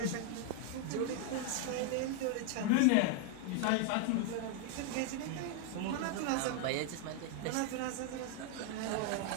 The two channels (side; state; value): both; different; correlation 0.00